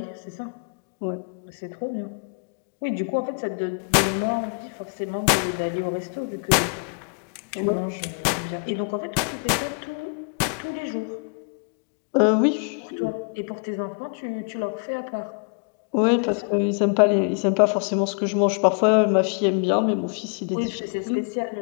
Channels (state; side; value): quieter; right; 39.9 dB